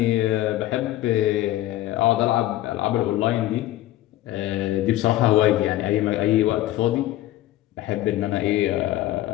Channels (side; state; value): right; quieter; 15.0 dB